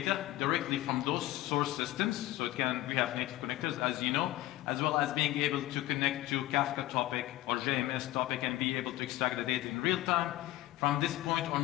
directly from those source systems, so we have native connectors, as you know, as well as being able to connect to Kafka topic or JMS topic and be able to extract the data in real time. From this point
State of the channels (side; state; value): right; quieter; 16.3 dB